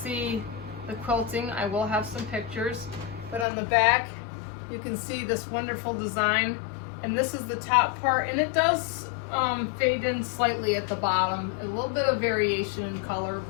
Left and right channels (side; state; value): right; drops out; at 3.5 s